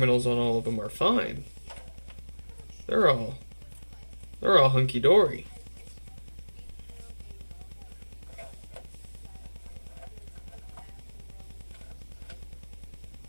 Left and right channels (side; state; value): both; inverted; correlation -1.00